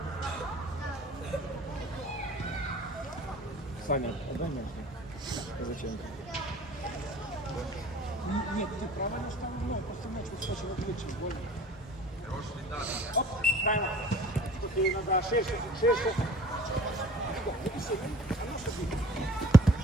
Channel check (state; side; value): normal; both; correlation 0.48